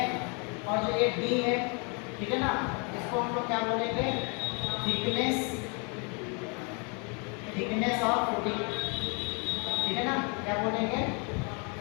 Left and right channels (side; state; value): right; quieter; 34.7 dB